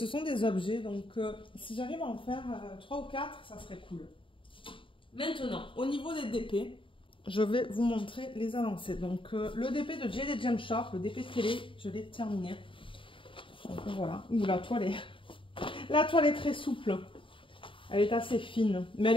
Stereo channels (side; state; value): right; late; 0.25 ms